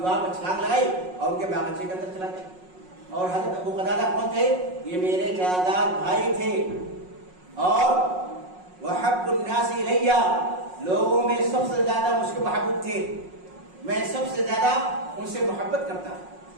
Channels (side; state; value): left; late; 5.5 ms